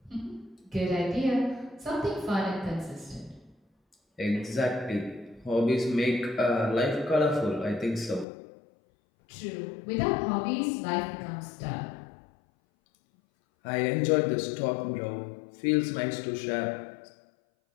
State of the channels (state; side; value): drops out; right; at 8.2 s